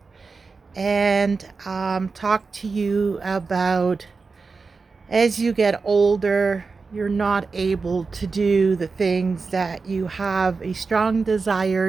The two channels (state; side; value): quieter; left; 4.4 dB